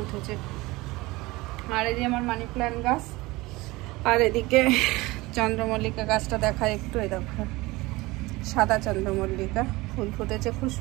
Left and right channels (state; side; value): quieter; left; 21.3 dB